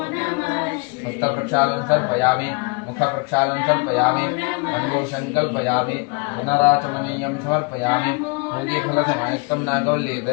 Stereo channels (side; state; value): right; quieter; 31.7 dB